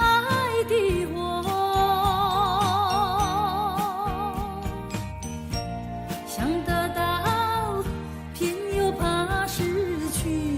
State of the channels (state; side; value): identical; both; correlation 1.00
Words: 的火，想得到偏又怕失去，